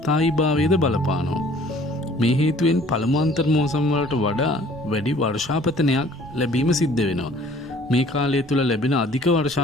බලපානවා. මේ හේතුවෙන් පළමු අන්තර් මෝසම වලට වඩා වැඩි වර්ෂාපතනයක් ලැබීම සිද්ධ වෙනවා. මේ කාලය තුළ ලැබෙන අධික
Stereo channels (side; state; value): both; normal; correlation 0.53